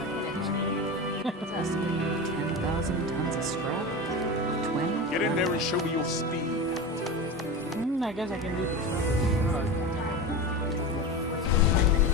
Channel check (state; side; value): normal; both; correlation 0.25